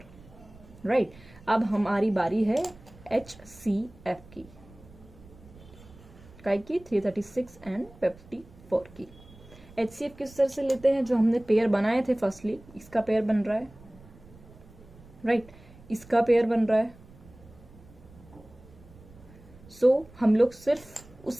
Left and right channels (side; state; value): right; noise; rumble, 22 dB below the sound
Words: राइट। अब हमारी बारी है एचसीएफ की, काय की 336 एंड 54 की। एचसीएफ किस तरह से लेते हैं, जो हमने पेयर बनाए थे फर्स्टली, इसका पेयर बन रहा है, राइट, इसका पेयर बन रहा है। सो हम लोग सिर्फ